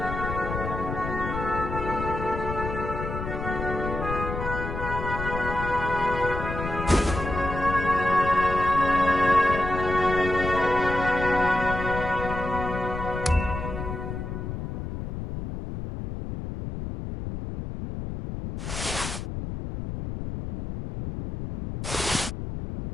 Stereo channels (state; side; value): noise; left; rumble, 5 dB below the sound